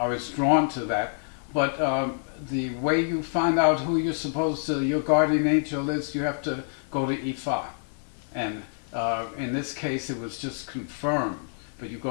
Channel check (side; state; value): right; silent; digital silence